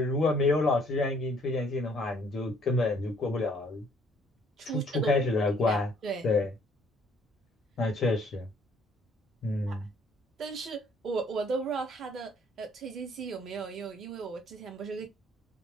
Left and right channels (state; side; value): normal; both; correlation 0.62